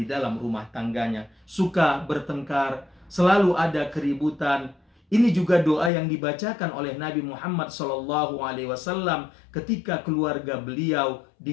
dalam rumah tangganya, suka bertengkar, selalu ada keributan. Ini juga doa yang dibacakan oleh Nabi Muhammad SAW ketika keluarga beliau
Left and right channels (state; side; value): drops out; right; at 5.9 s